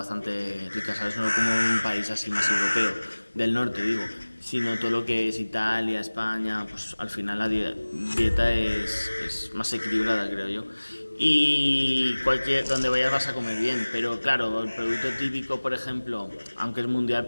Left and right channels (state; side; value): inverted; both; correlation -1.00